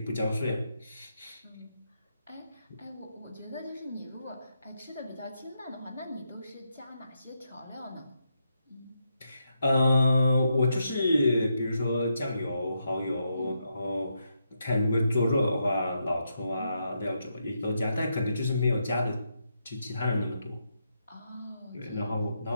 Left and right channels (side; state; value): both; inverted; correlation -0.82